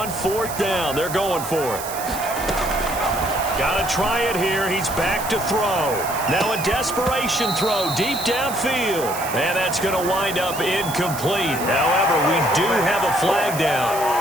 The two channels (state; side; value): noise; right; hiss, 10 dB below the sound